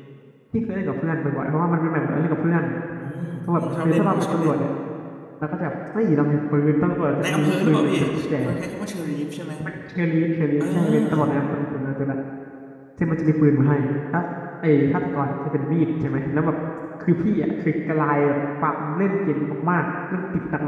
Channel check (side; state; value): both; identical; correlation 1.00